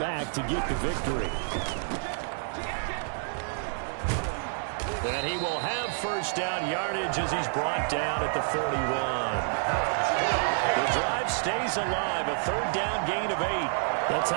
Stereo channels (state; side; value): silent; left; 57 dB below the other